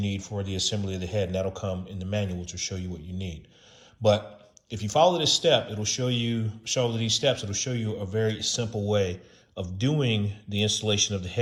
for the assembly of the head, and that'll come in the manual, which will show you what you need. But if you follow this step, it'll show you a very simple way of doing the installation of the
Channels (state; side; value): identical; both; correlation 1.00